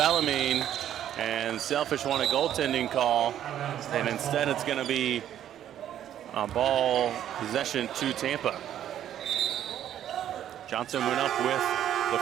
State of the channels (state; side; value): quieter; left; 10.9 dB